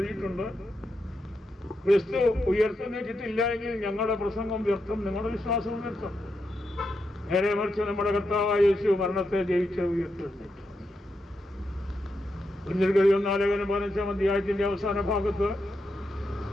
ക്രിസ്തു ഉയർത്തെഴുന്നേറ്റിട്ടില്ല എങ്കിൽ ഞങ്ങളുടെ പ്രസംഗം വ്യർത്ഥം, നിങ്ങളുടെ വിശ്വാസവും വ്യർത്ഥം. നേരെ മറിച്ച് നമ്മുടെ കർത്താവായ യേശു മരണത്തെ ജയിച്ച് ഉയർത്തെഴുന്നേറ്റു. 1 ലേഖനം 15-ാം അധ്യായത്തിന്റെ അവസാന ഭാഗത്ത്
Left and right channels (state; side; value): normal; both; correlation 0.84